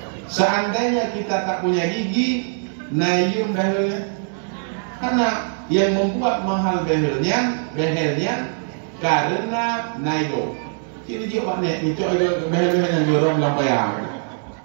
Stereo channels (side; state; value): left; silent; 64 dB below the other